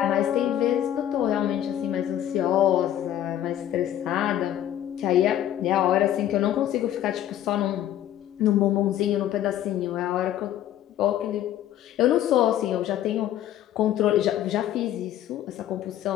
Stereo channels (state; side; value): quieter; right; 11.8 dB